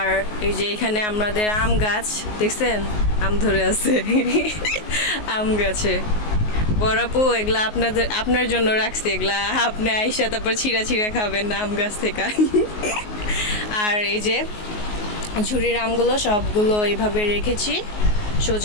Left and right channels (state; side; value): late; right; 19 ms